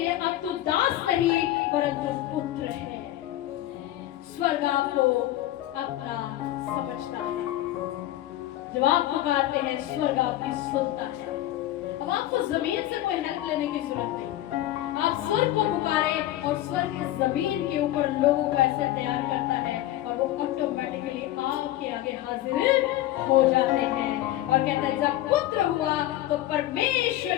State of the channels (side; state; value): right; quieter; 14.5 dB